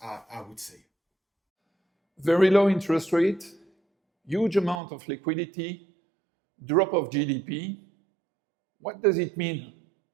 I would say. Very low interest rate huge amount of liquidity, drop of GDP. What does it mean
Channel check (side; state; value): left; drops out; at 4.8 s